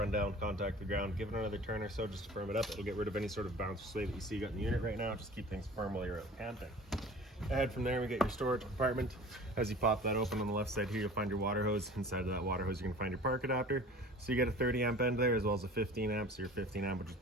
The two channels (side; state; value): both; normal; correlation 0.43